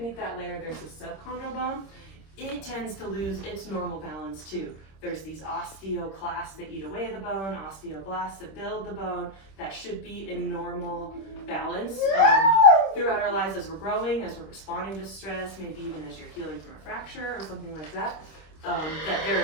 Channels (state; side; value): late; right; 26 ms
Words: that layer, there's the subchondral bone. It tends to lose its normal balance too. There's these osteoclasts that eat away the bone, osteoblasts that build the bone, that should be in normal balance throughout our lives as we're growing, as we're responding to stress, maybe even as you're healing from a fracture or something like that, that